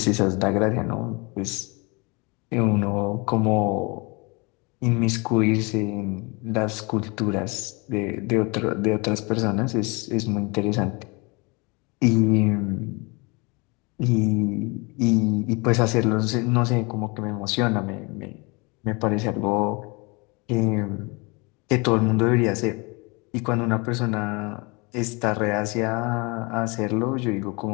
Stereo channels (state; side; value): quieter; right; 28.4 dB